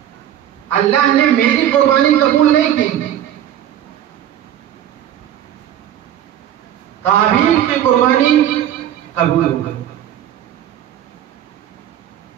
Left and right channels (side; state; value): left; quieter; 11.1 dB